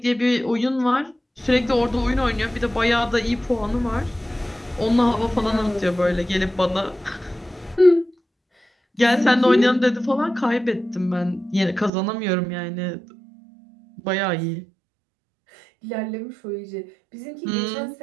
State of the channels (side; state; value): left; drops out; at 11.9 s